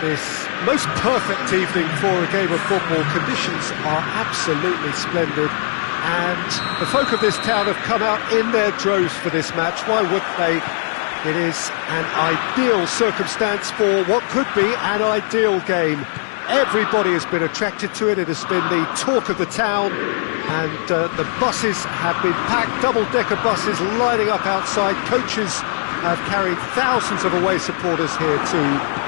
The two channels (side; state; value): right; silent; digital silence